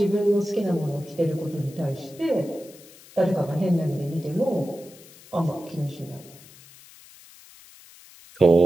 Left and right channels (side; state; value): left; noise; hiss, 22 dB below the sound